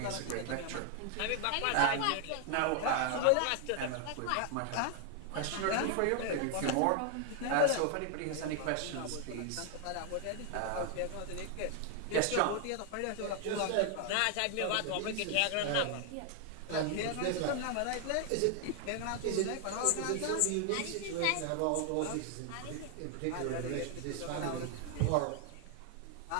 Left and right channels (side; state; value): both; different; correlation 0.00